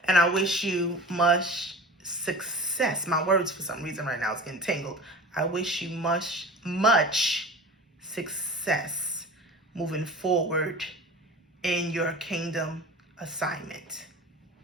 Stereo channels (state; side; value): normal; both; correlation 0.36